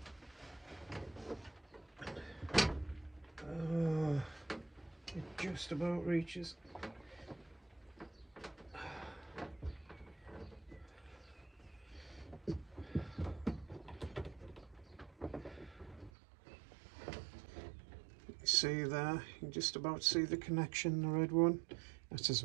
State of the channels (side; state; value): left; drops out; at 16.1 s